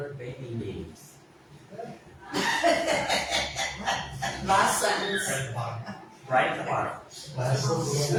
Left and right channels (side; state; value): both; identical; correlation 1.00